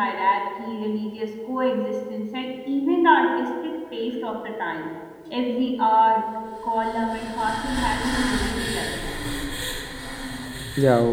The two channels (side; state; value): both; identical; correlation 1.00